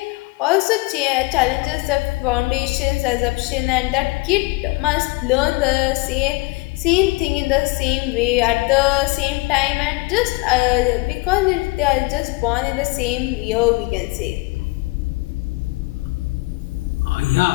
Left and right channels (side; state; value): right; quieter; 24.3 dB